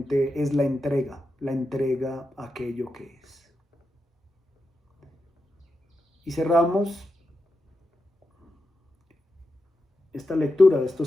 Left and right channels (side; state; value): both; normal; correlation 0.88